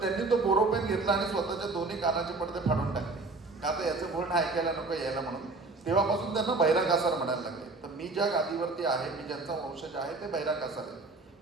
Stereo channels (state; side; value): quieter; left; 3.6 dB